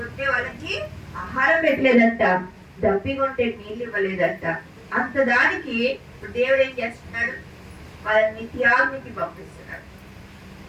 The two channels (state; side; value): identical; both; correlation 1.00